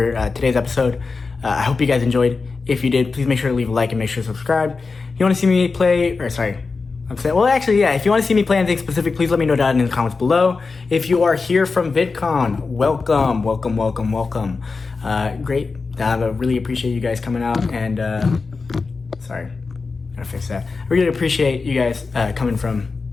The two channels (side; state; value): right; quieter; 4.3 dB